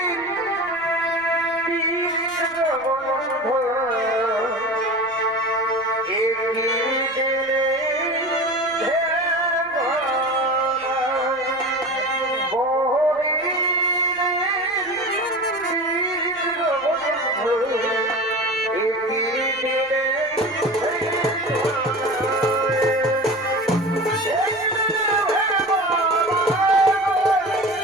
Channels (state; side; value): noise; left; rumble, 29 dB below the sound